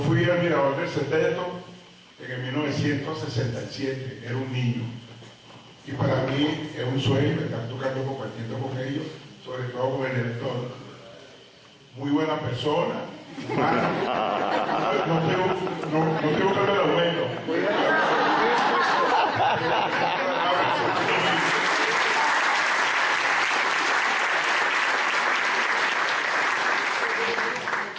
fui admirador del Sexteto en 1967, era un niño. Y para mí es un sueño estar tocando, compartiendo con ellos, sobre todo con el director. Muy buena persona, humana. No tengo que hablar de aumento.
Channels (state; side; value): identical; both; correlation 1.00